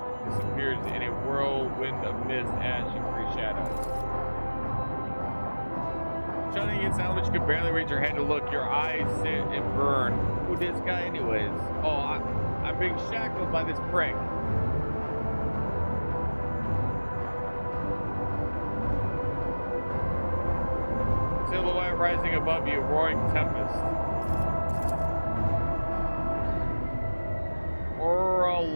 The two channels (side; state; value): both; inverted; correlation -1.00